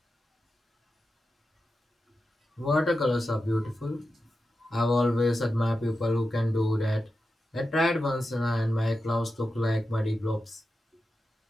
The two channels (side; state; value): both; normal; correlation 0.90